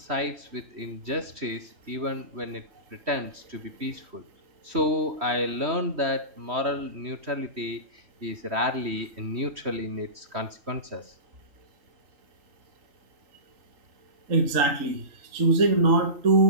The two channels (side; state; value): left; late; 3.1 ms